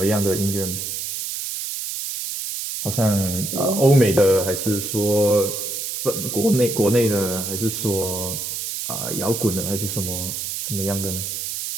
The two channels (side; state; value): right; noise; hiss, 4 dB below the sound